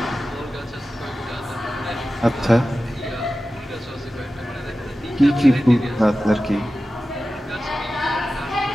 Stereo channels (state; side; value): normal; both; correlation 0.94